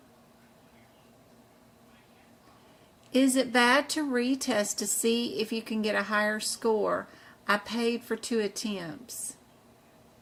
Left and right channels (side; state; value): both; identical; correlation 1.00